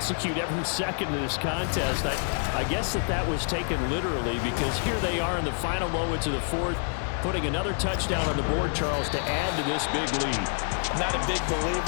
every second of this contest, I guess that was taken literally, because here they are in the final moments of the fourth, putting another touchdown on the board, Charles, to add to this big lead. Not a big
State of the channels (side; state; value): right; silent; 57 dB below the other